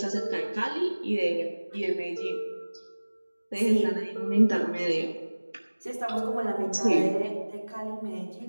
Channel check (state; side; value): inverted; both; correlation -1.00